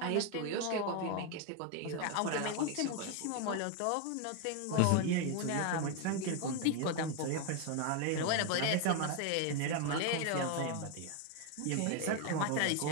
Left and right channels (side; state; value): both; different; correlation 0.01